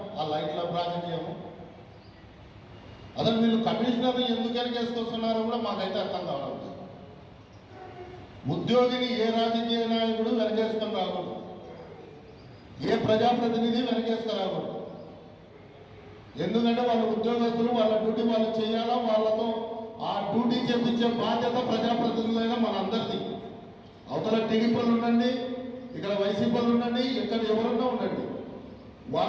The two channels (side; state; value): both; identical; correlation 1.00